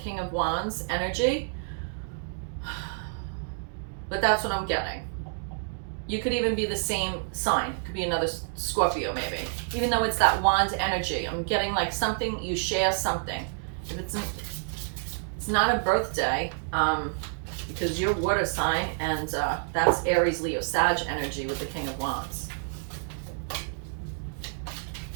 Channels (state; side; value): silent; left; digital silence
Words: of Wands energy. But that's what I'm getting. You could even be the same sign. It could be another Scorpio maybe. Even though it's that wand energy, I'm getting like something, you share something. If it's not a birthday, because you're water sign, and that's Aries, Leo, Sag energy with the King of Wands.